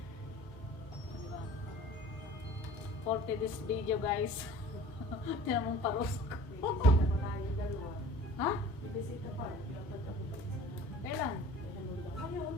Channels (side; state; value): both; normal; correlation 0.45